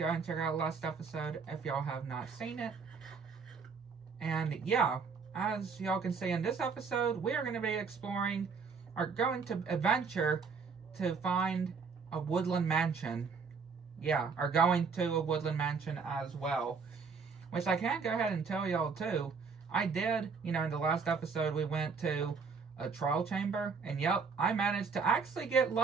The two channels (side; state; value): left; quieter; 5.3 dB